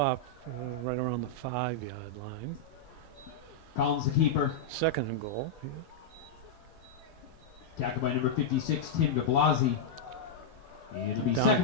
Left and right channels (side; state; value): right; quieter; 3.1 dB